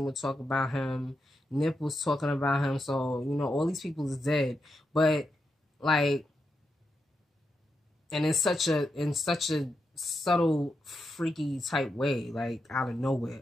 would talk about him. Nip was talking about him. So, all these people is dead. But, like, and in such a subtle, freaky type way, like, out of nowhere.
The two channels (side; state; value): both; normal; correlation 0.86